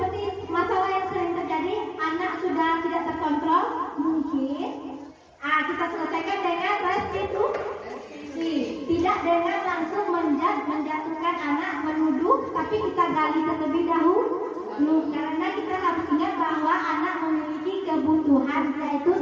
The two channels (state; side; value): identical; both; correlation 1.00